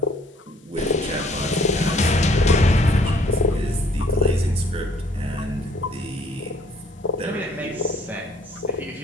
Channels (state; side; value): normal; both; correlation 0.61